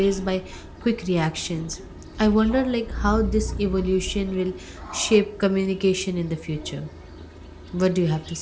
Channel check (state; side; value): identical; both; correlation 1.00